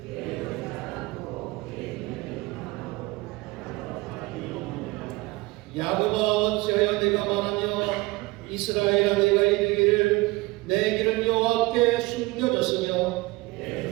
야곱아 어찌하여 내가 말하며 이스라엘아 내가 이르기를 내 길은 여호와께 숨겨졌으며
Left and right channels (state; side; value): quieter; left; 21.9 dB